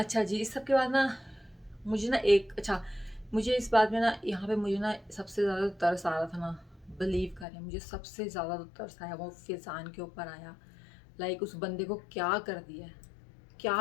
जी, इस सब के बाद ना मुझे ना मुझे इस बात में ना यहाँ पे मुझे ना सबसे ज़्यादा तरस आ रहा था ना बिलीव करें, मुझे सबसे ज़्यादा तो तरस आया वो फैज़ान के ऊपर आया। लाइक उस बंदे को क्या कर दिया,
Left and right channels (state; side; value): drops out; right; at 7.5 s